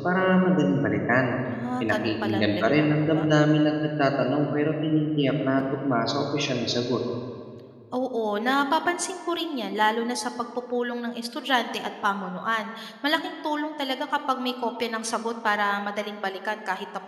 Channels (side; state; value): both; identical; correlation 1.00